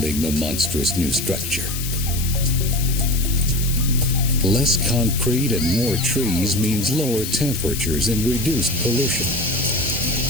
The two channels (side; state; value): left; noise; hiss, 6 dB below the sound